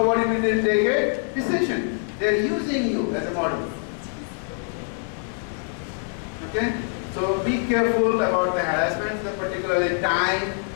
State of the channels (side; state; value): right; silent; 57 dB below the other